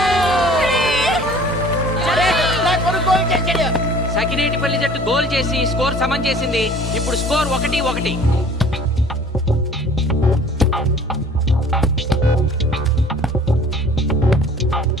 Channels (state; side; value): normal; both; correlation 0.49